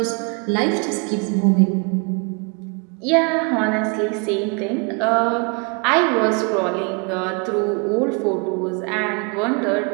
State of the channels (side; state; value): left; quieter; 33.7 dB